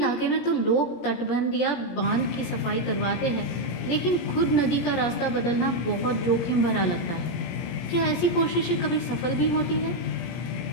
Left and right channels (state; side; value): late; right; 17 ms